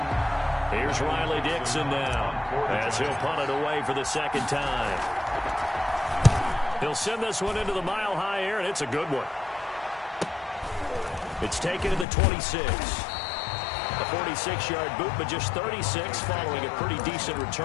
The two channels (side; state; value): right; drops out; at 12.1 s